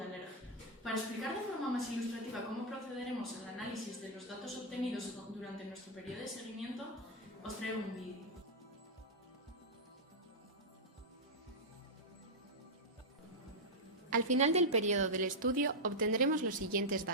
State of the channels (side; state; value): both; normal; correlation -0.04